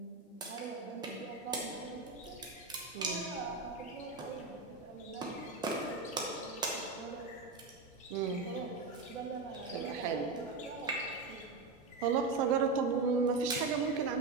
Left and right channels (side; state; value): left; quieter; 4.0 dB